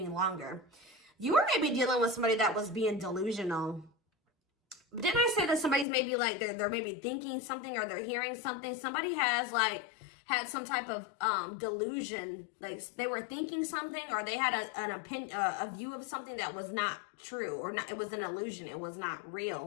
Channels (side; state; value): right; drops out; at 5.9 s